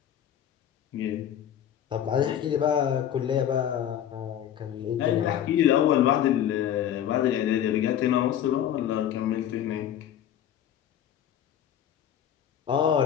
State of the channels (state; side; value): quieter; right; 10.3 dB